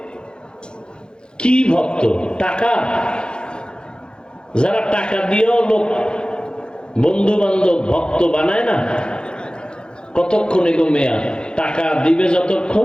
কি ভক্ত? টাকা, যারা টাকা দিয়েও লোক বন্ধু বান্ধব ভক্ত বানায় না, কতক্ষণ এগো মেয়া? টাকা দিবে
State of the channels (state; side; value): late; right; 0.049 ms